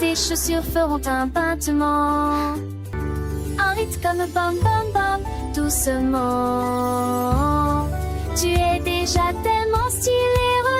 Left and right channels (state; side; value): identical; both; correlation 1.00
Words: chaussures feront un battement, un rythme comme bam bam bam, doucement. Tu es déjà tellement stylé,